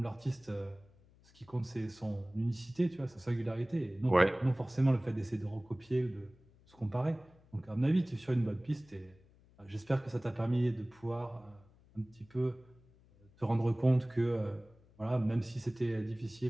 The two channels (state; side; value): noise; left; hum, 28 dB below the sound